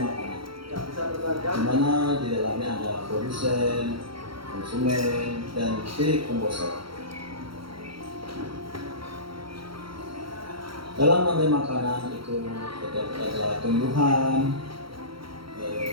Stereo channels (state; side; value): late; left; 0.74 ms